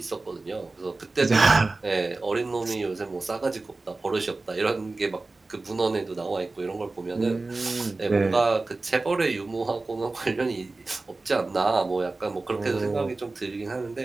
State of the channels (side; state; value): left; quieter; 3.4 dB